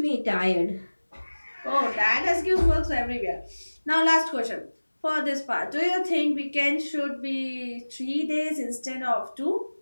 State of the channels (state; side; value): inverted; both; correlation -1.00